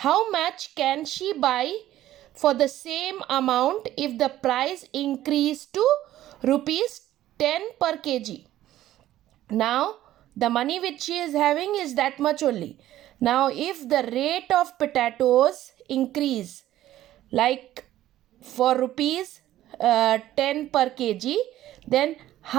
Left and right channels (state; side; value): quieter; left; 13.7 dB